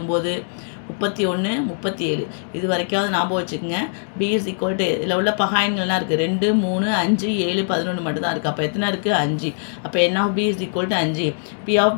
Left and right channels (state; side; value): silent; right; digital silence